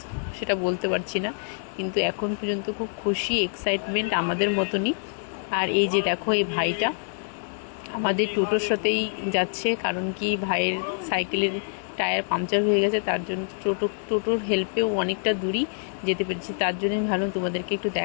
সেটা বলতে পারছি না। কিন্তু এখন পর্যন্ত খুব খুশি, এক্সাইটমেন্ট আমাদের মতনই। আর এই যে দেখো, এই ভাইটা আমাদের টোটোর সাথেই যাচ্ছে। কারণ কি, ভাইয়ের সাইকেলের টায়ার পাংচার হয়ে গেছে, তার জন্য টোটোর হেল্পেও অনেকটা দূরই যেতে পেরেছি। তার জন্য আমি ভাবলাম তোমাদেরকে একটু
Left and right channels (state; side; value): silent; right; 61 dB below the other